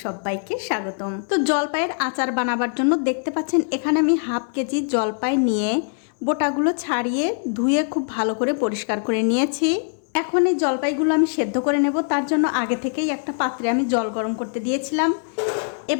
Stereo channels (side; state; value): right; silent; 64 dB below the other